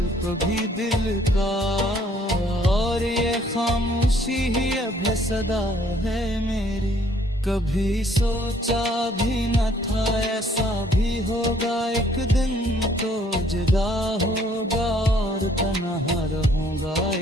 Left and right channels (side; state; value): both; normal; correlation 0.62